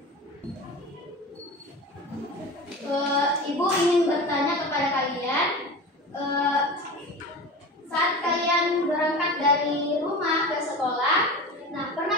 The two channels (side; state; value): both; normal; correlation 0.31